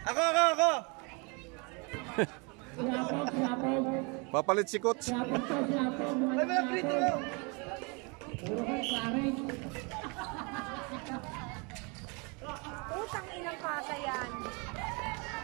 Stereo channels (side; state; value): left; quieter; 31.2 dB